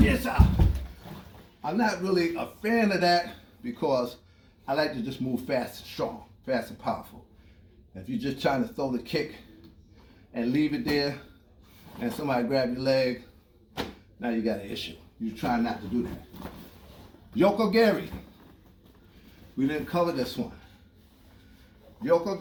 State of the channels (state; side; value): identical; both; correlation 1.00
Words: Yes, sir. I'm not really a fan of that because I like to just move fast and strong, fast and powerful. If you're just trying to throw the kick and leave it there, and somebody grab your leg, now you got an issue. You're trying not to do that. Yoko Gary. We didn't cover this one. Yoko